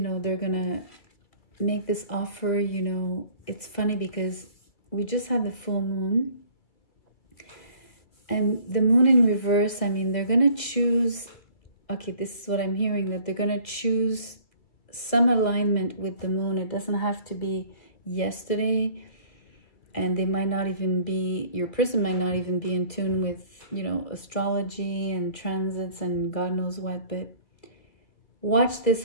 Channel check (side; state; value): right; late; 2.0 ms